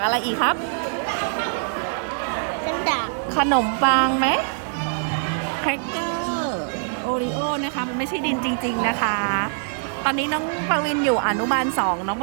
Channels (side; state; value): left; silent; digital silence